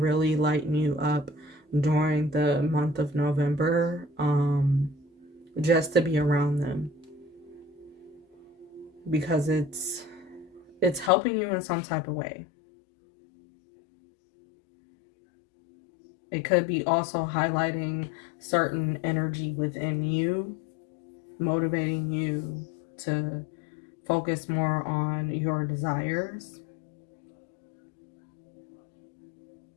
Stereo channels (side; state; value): right; drops out; at 11.1 s